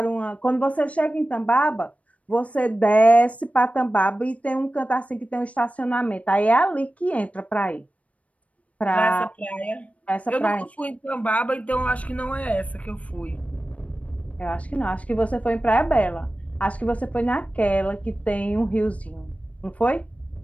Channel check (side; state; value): right; late; 0.066 ms